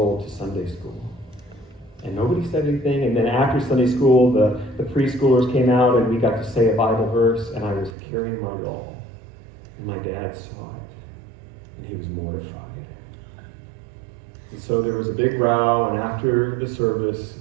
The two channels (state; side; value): drops out; left; at 8.0 s